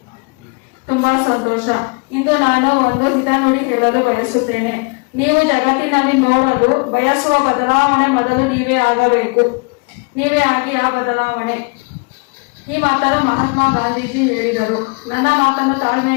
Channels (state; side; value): quieter; right; 31.4 dB